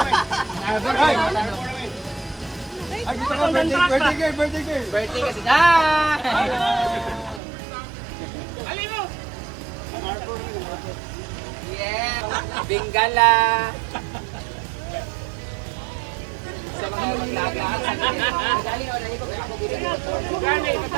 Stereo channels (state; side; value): drops out; left; at 7.4 s